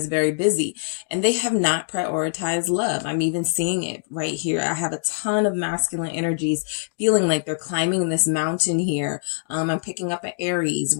very busy and they have not prioritized love. I'm even seeing it right here. I have a ton of masculine energies feeling like they're climbing this mountain here. I'm picking up an Aries,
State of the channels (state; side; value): silent; right; digital silence